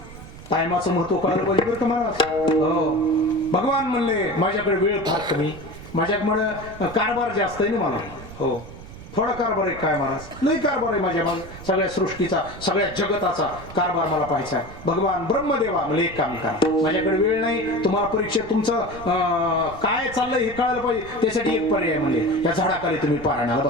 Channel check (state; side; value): noise; right; rumble, 15 dB below the sound